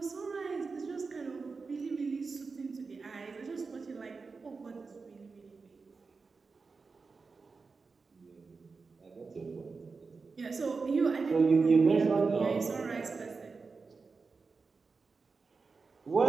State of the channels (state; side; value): quieter; left; 4.5 dB